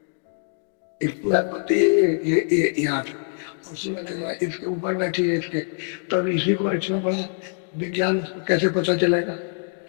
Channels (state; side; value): silent; right; digital silence